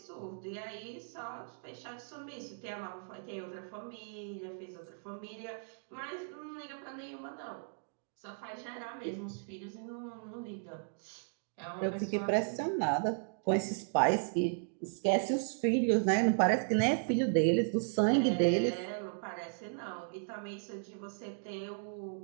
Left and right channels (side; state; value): left; silent; digital silence